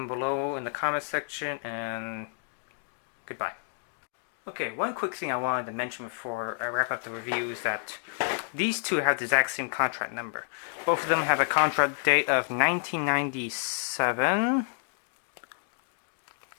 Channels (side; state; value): right; silent; digital silence